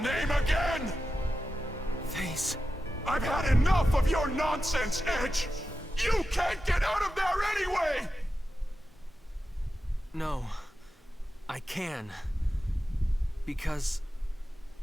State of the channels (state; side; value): normal; both; correlation 0.91